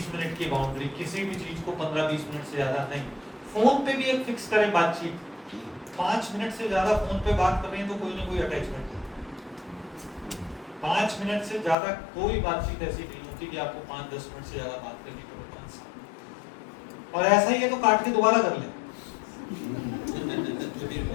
मिनट की बाउंड्री, किसी भी चीज को 15-20 मिनट से ज्यादा नहीं। फोन पे भी एक फिक्स करें बातचीत, 5 मिनट से ज्यादा फोन पे बात कर रहे हैं तो कोई ना कोई अटैचमेंट है। 5 मिनट से ज्यादा कोई बातचीत ऐसी नहीं होती कि आपको 5-10 मिनट से ज्यादा बात करनी पड़े 5 साल। और ऐसा ही है तो काट के दोबारा कर ले।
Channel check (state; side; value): drops out; right; at 11.8 s